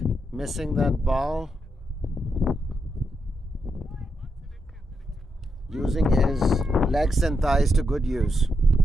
missing that ball. Using his legs and thighs to good use.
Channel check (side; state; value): both; normal; correlation 0.83